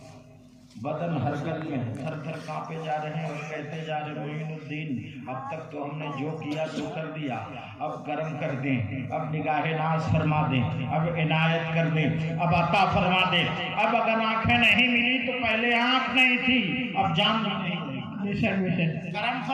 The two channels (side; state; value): both; identical; correlation 1.00